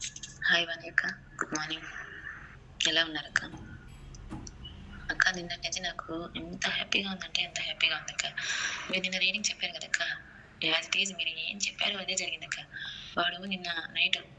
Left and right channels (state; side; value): identical; both; correlation 1.00